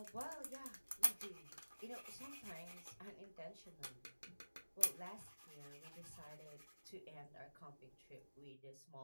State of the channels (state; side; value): inverted; both; correlation -1.00